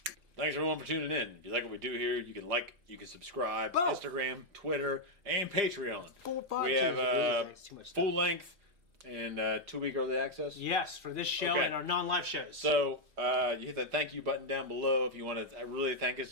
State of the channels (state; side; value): late; left; 2.6 ms